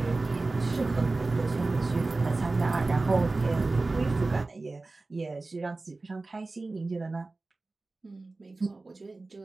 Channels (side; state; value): left; quieter; 3.4 dB